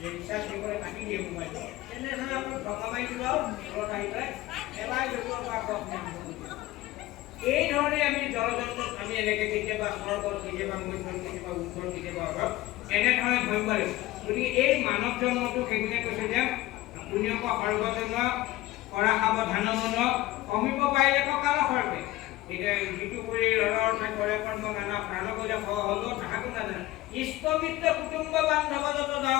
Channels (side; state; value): right; quieter; 17.2 dB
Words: ৰিচাৰ্জ কৰিবলৈ কাটি দিয়ে মোবাইলটো তেনেধৰণে আপোনাৰ টকা মাৰি দিব আৰু ঘৰত আহি পেলাই এবাৰ য'তৰ পৰা এই ধৰণে আমি জলযন্ত্ৰত আমি এনেকৈ কেতিয়াবা স্বৰ্গত কেতিয়াবা মধ্যত কেতিয়াবা উত্তৰ কেতিয়াবা অভাৱ এনেধৰণে ভাবিব লাগিব গতিকে এই মানৱ জন্মটো সেইখিনিয়ে কৈছে যে পুণ্যক সৰ্বজন্ম কৰা সাৱধান মন কমিব পাৰিলে কাল সৰ্বে এতিয়া যিটো কৰি ৰণৰ কৰে কৰ্ম নানা প্ৰাণ কৰিলে হ'ল তাহাকো নাজানে ইষ্টমিত্ৰ কুটুম্ব বান্ধৱ যত